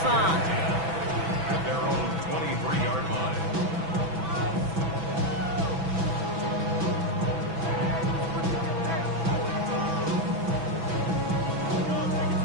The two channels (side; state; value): left; late; 6.1 ms